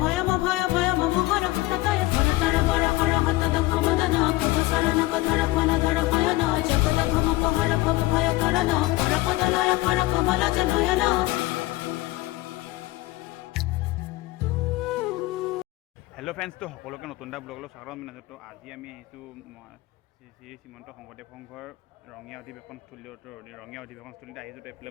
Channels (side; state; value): right; quieter; 19.1 dB